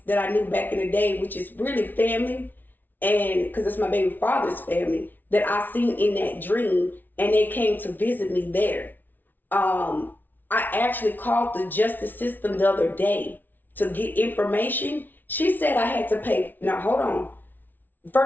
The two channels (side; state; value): right; late; 0.087 ms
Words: that I knew back in the day, which is really family, and because it's my baby father's family that I seen in that dream, and they came to visit me there. um, I actually called the justice system the other day to get information. She said I had to pay. Now, hold on.